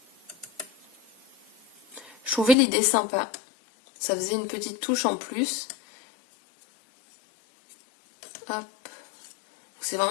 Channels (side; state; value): right; drops out; at 2.6 s